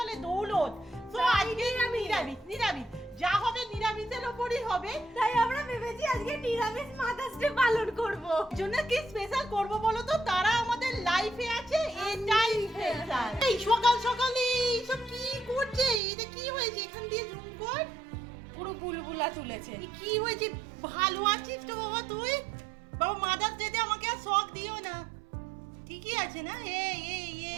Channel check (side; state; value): left; drops out; at 16.0 s